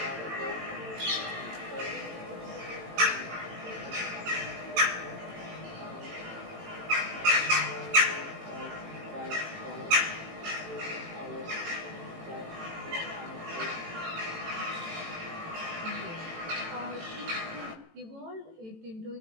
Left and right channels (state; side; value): late; left; 18 ms